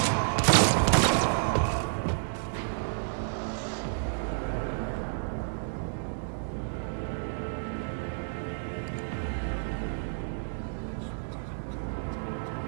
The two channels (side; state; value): left; silent; digital silence